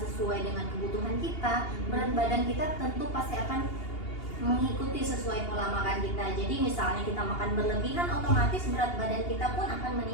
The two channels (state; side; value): late; right; 2.8 ms